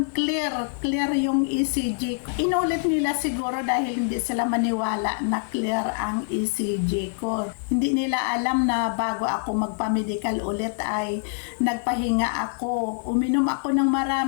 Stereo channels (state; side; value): silent; right; digital silence